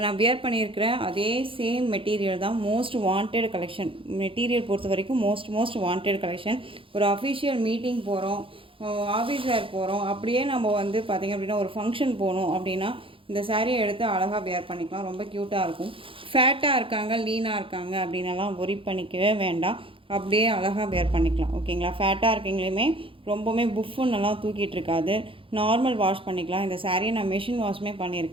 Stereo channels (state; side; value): late; left; 0.26 ms